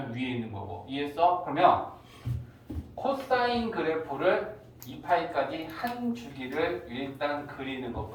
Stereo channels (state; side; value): identical; both; correlation 1.00